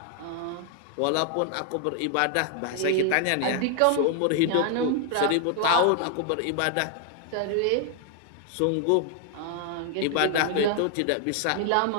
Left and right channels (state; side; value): different; both; correlation 0.00